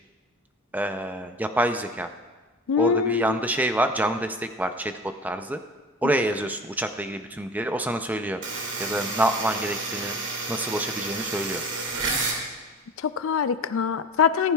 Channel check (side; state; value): both; normal; correlation 0.35